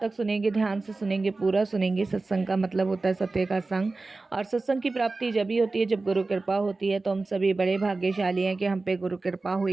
तक सुनेंगे, ध्यान से सुनेंगे, पूरा सुनेंगे। सत्संग का मतलब होता है सत्य का संग, और सत्संग की प्राप्ति जब ही होती है जब गुरु कृपा होती है। तो हम सभी बड़े भाग्यशाली हैं कि हम पे गुरु कृपा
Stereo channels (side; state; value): left; quieter; 3.5 dB